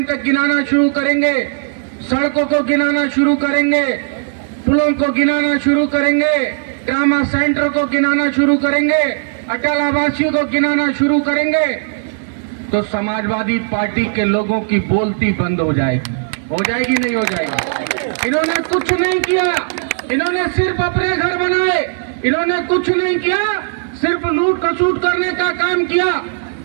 तक गिनाना शुरू करेंगे, सड़कों को गिनाना शुरू करेंगे, पुलों को गिनाना शुरू करेंगे, ट्रामा सेंटर को गिनाना शुरू करेंगे, अटल आवासीय को गिनाना शुरू करेंगे, तो समाजवादी पार्टी के लोगों की बोलती बंद हो जाएगी। हो जाएगी नहीं हो जाएगी? इन्होंने कुछ नहीं किया, इन्होंने सिर्फ अपने घर बनाए, इन्होंने कुछ नहीं किया, सिर्फ लूट खसूट करने का काम किया।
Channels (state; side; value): silent; left; digital silence